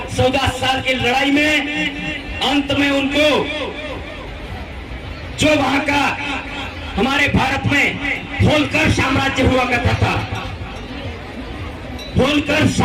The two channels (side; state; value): both; identical; correlation 1.00